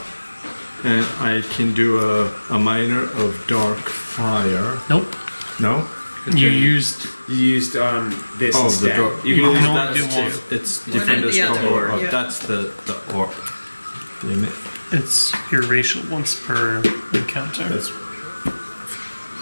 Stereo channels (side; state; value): both; inverted; correlation -1.00